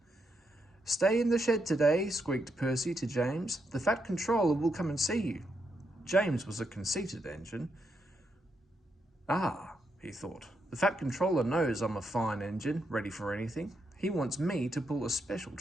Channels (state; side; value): normal; both; correlation 0.81